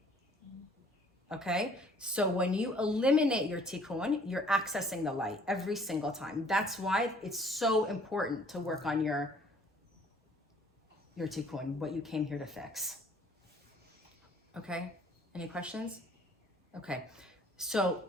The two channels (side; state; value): both; normal; correlation 0.58